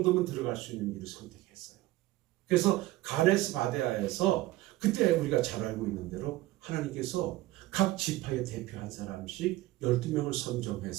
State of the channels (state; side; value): quieter; left; 17.4 dB